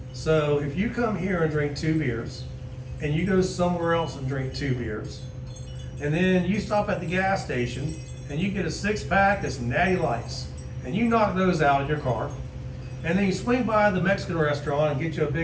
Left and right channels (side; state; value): both; identical; correlation 1.00